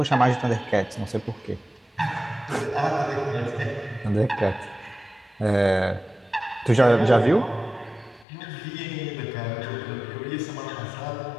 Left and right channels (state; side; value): drops out; right; at 8.2 s